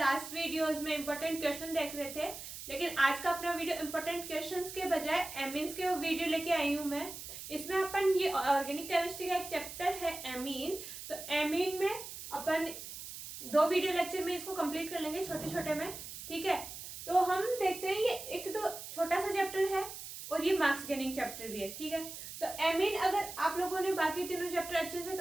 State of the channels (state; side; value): noise; right; hiss, 10 dB below the sound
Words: वीडियोस में इंपॉर्टेंट क्वेश्चन देख रहे थे, लेकिन आज का अपना वीडियो इंपॉर्टेंट क्वेश्चंस के बजाय एमीन्स के वीडियो लेके आई हूँ मैं। इसमें अपन ये ऑर्गेनिक केमिस्ट्री का एक चैप्टर है एमीन, तो एमीन में अपन 2 वीडियो लेक्चर में इसको कंप्लीट कर लेंगे छोटे छोटे में। ठीक है, तो हम देखते हैं ये एक तो छोटा सा चैप्टर है और ये मार्क्स गेनिंग चैप्टर भी है। ठीक है, तो एमीन अगर आप लोगों ने बाकी तीनों चैप्टर अच्छे से